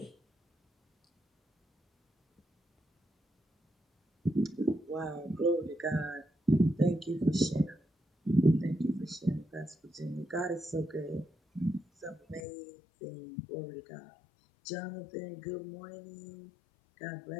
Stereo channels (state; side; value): drops out; right; at 12.4 s